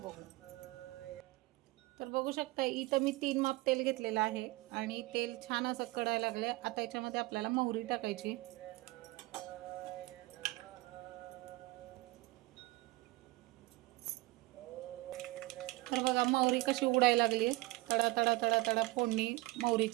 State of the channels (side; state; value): left; quieter; 20.7 dB